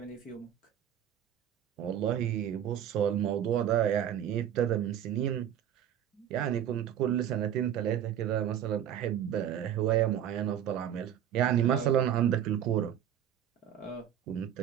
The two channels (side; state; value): left; quieter; 10.1 dB